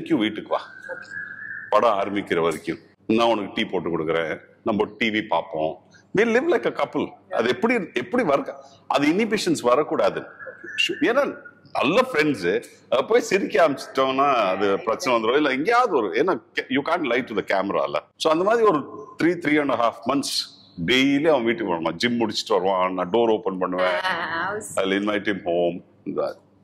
வீட்டுக்கு வா, படம் ஆரம்பிக்கிற வரைக்கும் நான் உனக்கு டீ போட்டு கொடுக்குறேன், நம்ம டிவி பார்ப்போம், we live like a couple. அது எப்படி வர, அது இன்ஹிபிஷன்ஸ் வரக்கூடாது. ஏன்னா நல்ல ஃப்ரெண்ட்ஸு போய் சிரிக்க ஆரம்பிச்சிட்டோம்னா அது பிரச்சனை வந்துடும். இல்லை எங்கேயாவது ஒரு, ஏன்னா you can't lie to the கேமரால. ஸோ அந்த மாதிரி ஒரு 3.5 months டெய்லி அவன் வீட்டுக்கு வருவான். ஜிம் முடிச்சுட்டு வருவான், நான் டோர் ஓப்பன் பண்ணுவேன், அதில் இன்வைட் ஹிம் ஹோம்.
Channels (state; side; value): identical; both; correlation 1.00